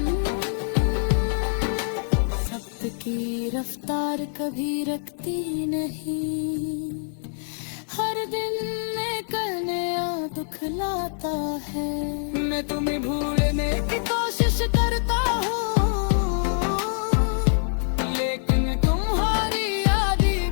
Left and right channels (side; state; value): right; silent; digital silence